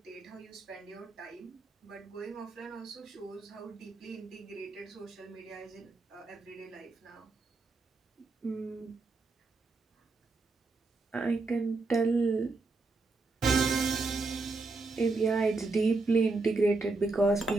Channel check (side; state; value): left; quieter; 3.6 dB